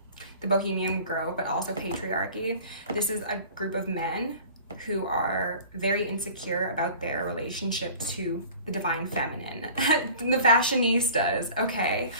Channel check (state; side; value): inverted; both; correlation -0.45